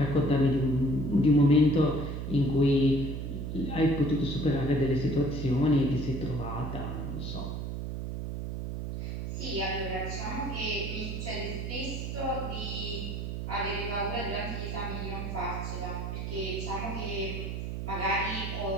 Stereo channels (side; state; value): right; noise; hum, 4 dB below the sound